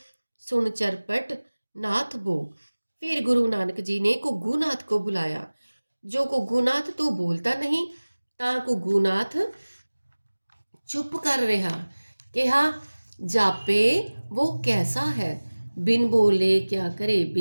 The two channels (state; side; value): inverted; both; correlation -1.00